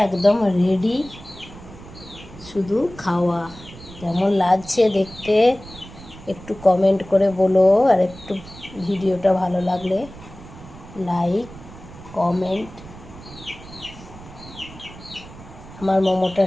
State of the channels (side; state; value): right; noise; rumble, 17 dB below the sound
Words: একদম রেডি, শুধু খাওয়া। কেমন লাগছে দেখতে একটু কমেন্ট করে বলো। আর একটু ভিডিওটা ভালো লাগলে লাইক কমেন্ট। আমার মোমোটা